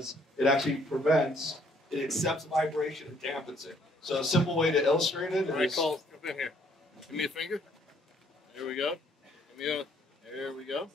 it actually prevents, it accepts vibration and dampens it. So a simple way to illustrate it is... All right, Cole, jump in here. Give me a finger. There we go. Give me a... There we go.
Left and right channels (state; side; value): normal; both; correlation 0.65